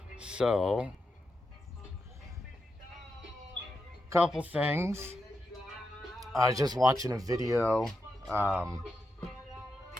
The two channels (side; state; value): both; normal; correlation 0.86